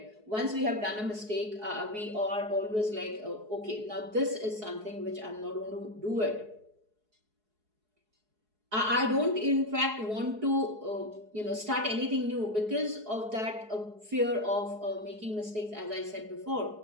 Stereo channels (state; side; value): late; left; 4.7 ms